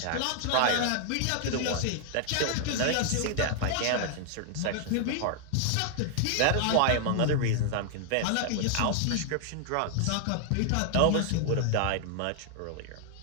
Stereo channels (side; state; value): both; different; correlation 0.00